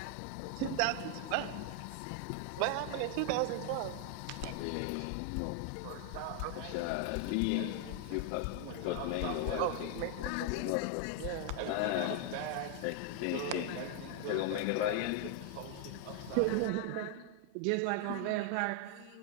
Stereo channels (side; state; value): both; different; correlation 0.00